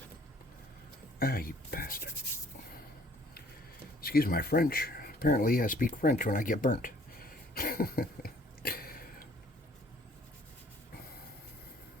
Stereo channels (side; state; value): both; normal; correlation 0.59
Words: Ah, you bastard. Excuse my French. Apparently I speak French when I get burnt.